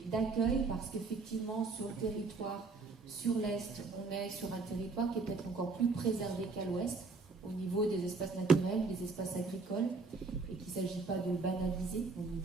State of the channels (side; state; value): left; quieter; 4.1 dB